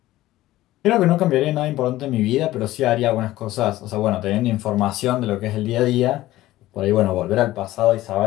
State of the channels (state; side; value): quieter; right; 16.0 dB